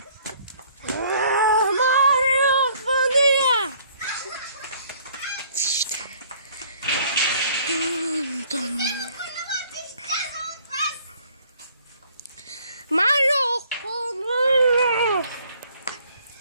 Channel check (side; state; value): both; inverted; correlation -0.60